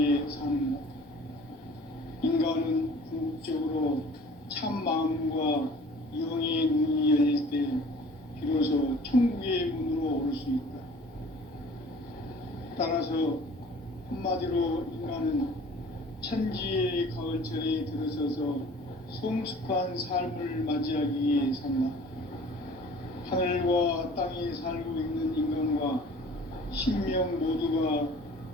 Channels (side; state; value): both; normal; correlation 0.48